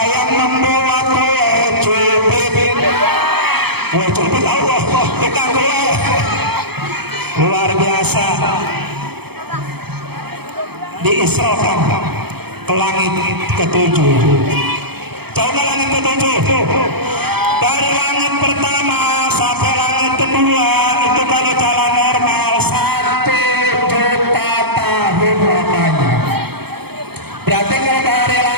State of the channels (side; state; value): left; late; 0.97 ms